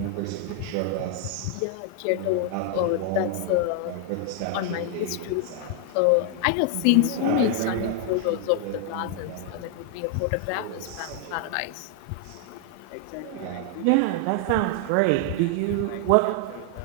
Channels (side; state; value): both; different; correlation 0.00